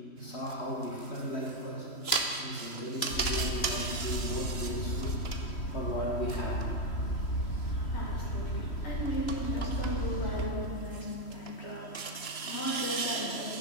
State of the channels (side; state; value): right; late; 3.0 ms